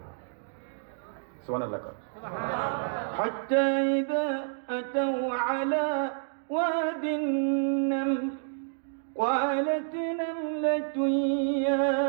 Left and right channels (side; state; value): left; silent; digital silence